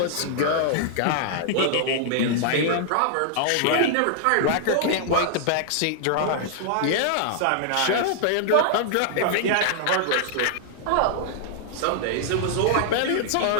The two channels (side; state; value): both; different; correlation -0.01